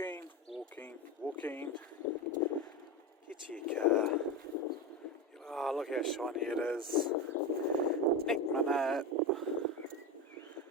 Get to your car. Oh, look how shiny it is. Nick my nut.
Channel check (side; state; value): both; normal; correlation 0.18